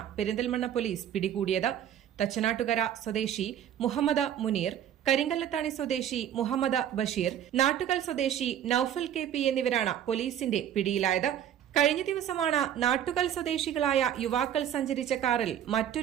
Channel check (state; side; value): quieter; left; 10.2 dB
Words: പെരിന്തൽമണ്ണ പോലീസ് പിടികൂടിയത്. തച്ചനാട്ടുകര സ്വദേശി മുഹമ്മദ് മുനീർ, കരിങ്കല്ലത്താണി സ്വദേശി മുഹമ്മദ് ബഷീർ, നാട്ടുകൽ സ്വദേശി നൌഫൽ KP എന്നിവരാണ് പോലീസിന്റെ പിടിയിലായത്. കഴിഞ്ഞ ദിവസമാണ് നാട്ടുകൽ സ്വദേശികളായ യുവാക്കൾ സഞ്ചരിച്ച കാറിൽ